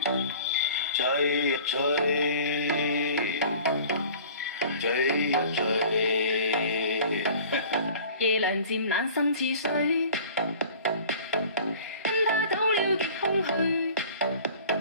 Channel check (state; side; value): inverted; both; correlation -0.45